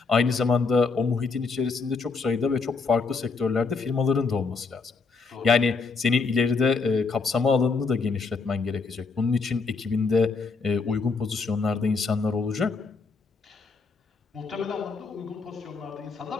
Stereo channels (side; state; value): right; quieter; 4.5 dB